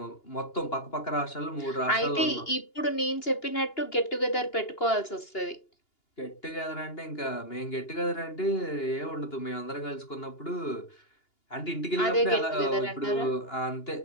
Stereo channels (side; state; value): right; late; 2.8 ms